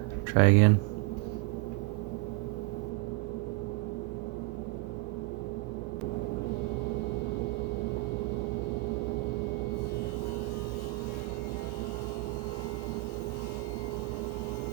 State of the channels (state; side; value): quieter; left; 22.0 dB